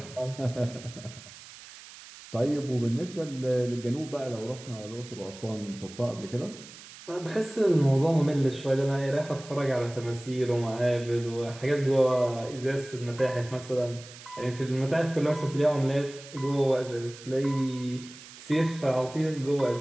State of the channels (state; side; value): noise; right; hiss, 17 dB below the sound